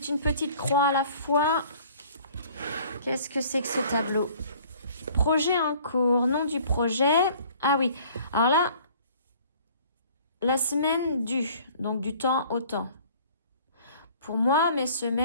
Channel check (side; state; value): both; inverted; correlation -0.53